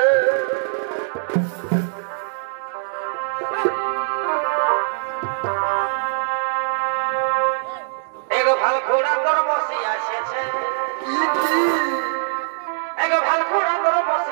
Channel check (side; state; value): left; silent; digital silence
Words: এগো ভাল ঘোড়া তোর বসি আসিয়েছে এগো ভাল ঘোড়া তোর